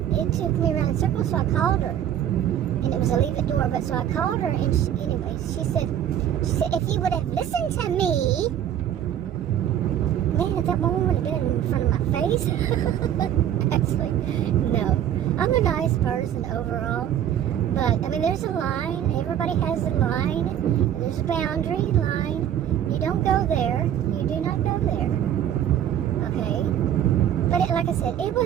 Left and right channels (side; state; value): left; quieter; 10.4 dB